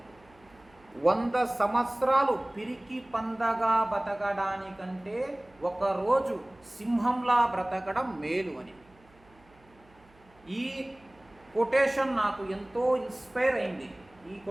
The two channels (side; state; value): right; noise; hum, 30 dB below the sound